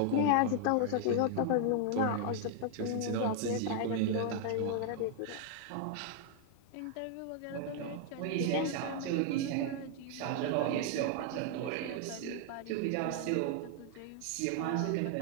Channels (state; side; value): different; both; correlation 0.00